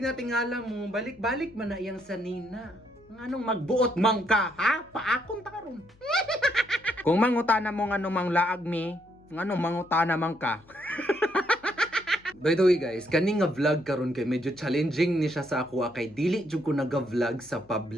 nating alam mo balik-balik man na iyang sanina. Anong magbuot man ka ha? Paakon ta karon. Kung mangutana mo nganong manglaag mi, nganong mangutana man ka. By the way guys, kani nga vlog karon kay medyo challenging ni siya sa ako kay dili jud ko naga-vlog sa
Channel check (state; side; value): noise; left; hum, 29 dB below the sound